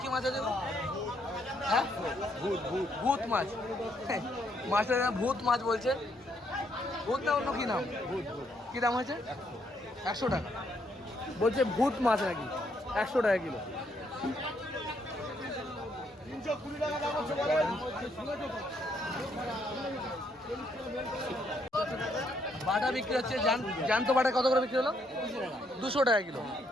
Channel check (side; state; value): both; normal; correlation 0.73